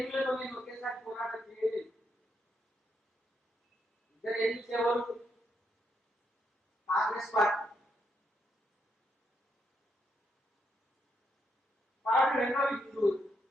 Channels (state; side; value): normal; both; correlation 0.78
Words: నేను ఒకేసారి పోరాటం చేయలేదు. ఇద్దరు ఎన్నికలు ఎవరు? కాంగ్రెస్ పార్టీ. కాబట్టి రెండో హిందూ